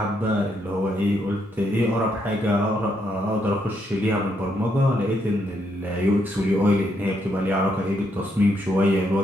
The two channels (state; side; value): normal; both; correlation 0.76